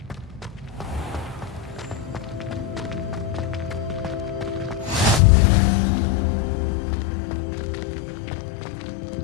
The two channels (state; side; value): drops out; right; at 5.2 s